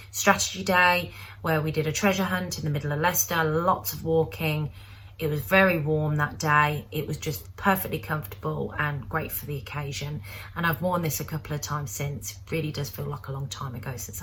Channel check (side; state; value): both; identical; correlation 1.00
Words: strategy day where we did a treasure hunt in the middle of Leicester, lots of walking. It was very warm that day. It was just perfectly comfortable and great for the occasion. And I've worn this a couple of times since. It really does feel like a long time ago since